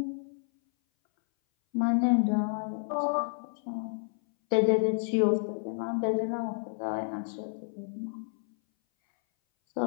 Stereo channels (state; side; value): silent; right; 58 dB below the other